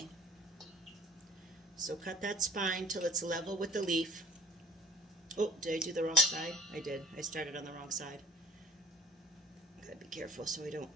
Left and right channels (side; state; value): both; normal; correlation 0.51